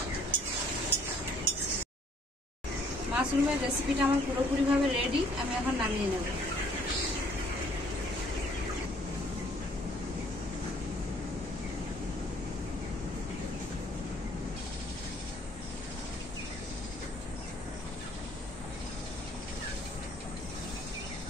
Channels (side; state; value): both; normal; correlation 0.61